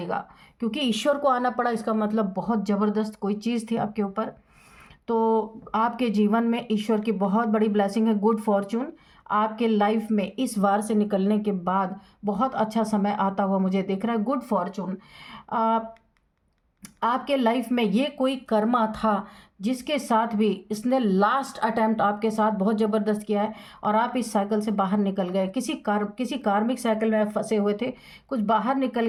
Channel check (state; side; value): identical; both; correlation 1.00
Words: क्योंकि ईश्वर को आना पड़ा, इसका मतलब बहुत ज़बरदस्त कोई चीज़ थी आपके ऊपर। तो आपके जीवन में ईश्वर की बहुत बड़ी ब्लेसिंग है, गुड फॉर्चून आपके लाइफ में इस वार से निकलने के बाद बहुत अच्छा समय आता हुआ मुझे दिख रहा है, गुड फॉर्चून। आपके लाइफ में ये कोई कर्मा था जिसके साथ भी इसने लास्ट अटेम्प्ट आपके साथ बहुत ज़बरदस्त किया है, और आप इस साइकिल से बाहर निकल गए, किसी कार्मिक साइकिल में फंसे हुए थे, कुछ बाहर निकल